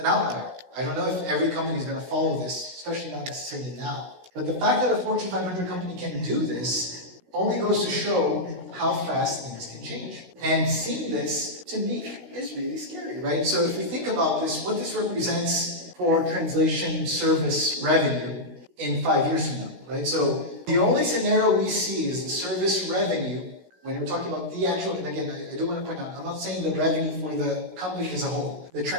outlier. I don't know if every company is going to follow this, especially not necessarily now. But the fact that a Fortune 500 company can do this only goes to show how fast things can change. And seeing this, to me, is really scary, right? So if we think about this, what this represents for translation service revenue in 5 years from now, right? So the only scenario we see is the service revenue, when we're talking about the actual, and again, I do want to point out, I'm not saying the revenue for the company as a whole. The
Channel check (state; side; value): late; left; 16 ms